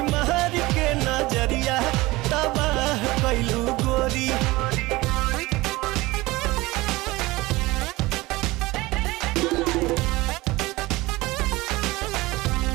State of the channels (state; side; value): quieter; left; 20.5 dB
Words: महर के नजरिया तबाह कैलू गोरी।